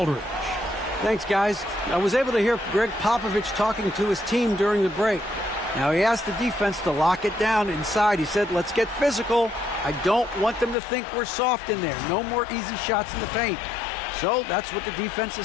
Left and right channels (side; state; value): right; drops out; at 10.8 s